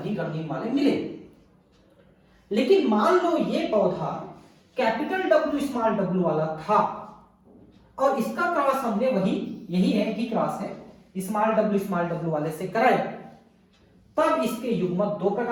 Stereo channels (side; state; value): both; identical; correlation 1.00